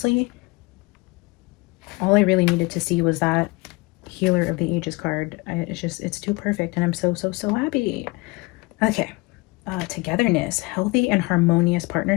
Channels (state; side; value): quieter; right; 24.5 dB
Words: all I really needed to see was that Healer of the Ages card. It's too perfect, and I'm so happy. Okay. Togetherness, healthy and harmonious